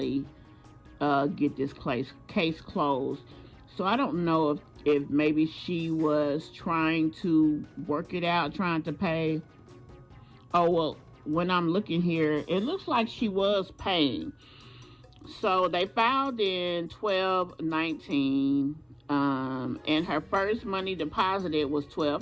get this case closed. So I don't know if maybe she was trying to work it out, trying to pay. Oh, well, when I'm looking here, it looks like she was paying. So they filed in 12/19, and her first money deposited was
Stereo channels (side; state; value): both; identical; correlation 1.00